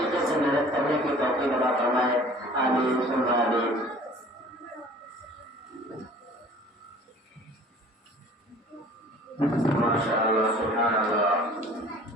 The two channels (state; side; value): normal; both; correlation 0.48